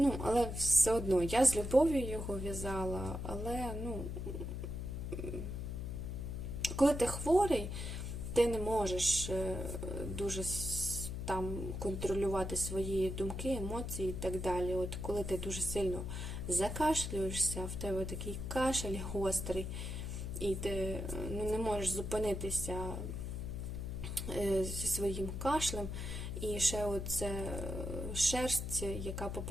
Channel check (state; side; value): noise; left; hum, 4 dB below the sound